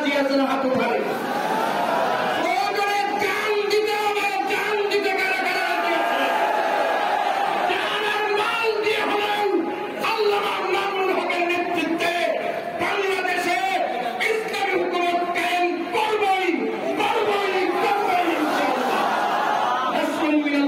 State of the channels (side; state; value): both; identical; correlation 1.00